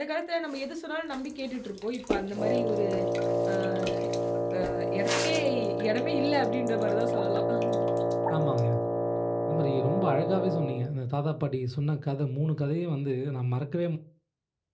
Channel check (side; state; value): both; identical; correlation 1.00